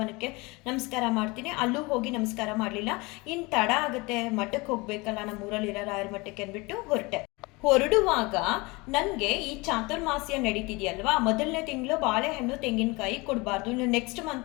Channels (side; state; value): right; quieter; 25.1 dB